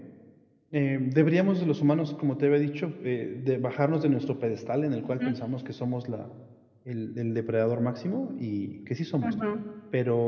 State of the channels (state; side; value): identical; both; correlation 1.00